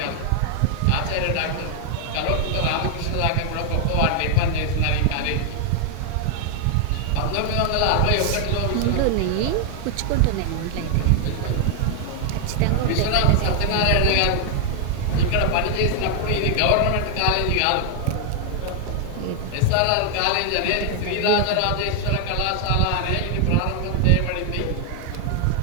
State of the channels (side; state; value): both; different; correlation 0.00